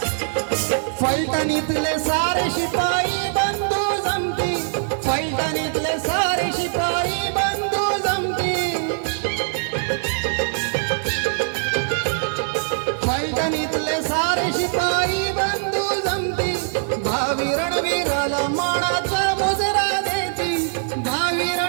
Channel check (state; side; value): silent; left; 64 dB below the other